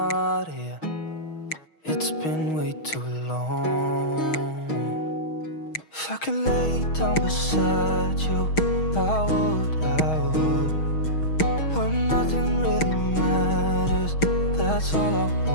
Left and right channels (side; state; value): right; late; 6.3 ms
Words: here. It's been way too long. If I could lay down beside you, I would. When nothing really matters, that's all I